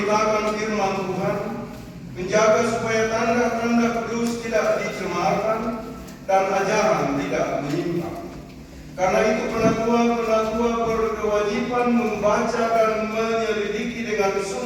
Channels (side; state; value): both; identical; correlation 1.00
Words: firman Tuhan, menjaga supaya tanda-tanda kudus tidak dicemarkan dan ajaran tidak menyimpang. Karena itu penatua berkewajiban membaca dan menyelidiki dengan